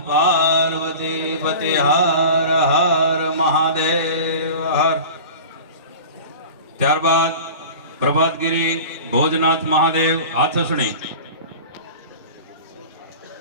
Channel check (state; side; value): inverted; both; correlation -0.36